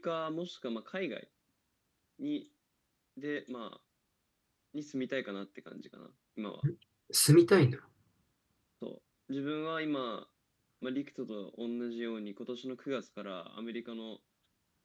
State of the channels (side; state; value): both; identical; correlation 1.00